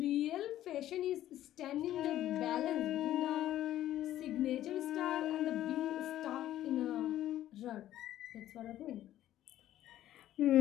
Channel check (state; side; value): quieter; right; 13.0 dB